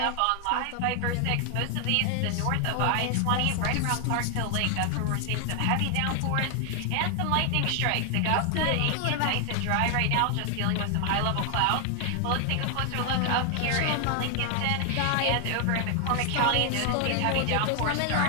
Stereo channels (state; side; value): different; both; correlation 0.00